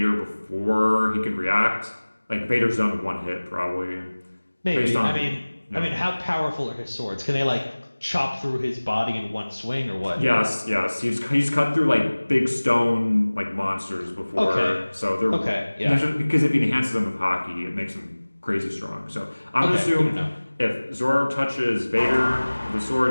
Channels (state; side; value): inverted; both; correlation -1.00